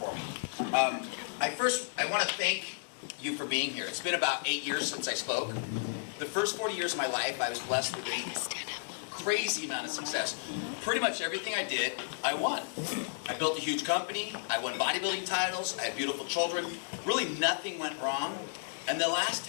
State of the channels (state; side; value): silent; right; digital silence